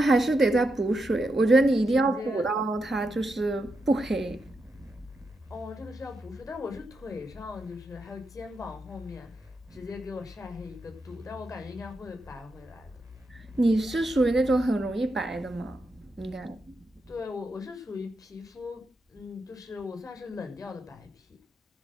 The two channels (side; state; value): both; normal; correlation 0.85